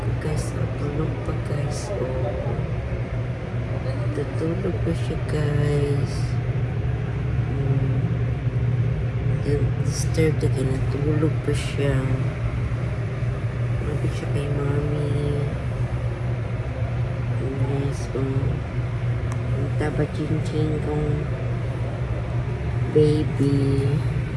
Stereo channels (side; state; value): both; identical; correlation 1.00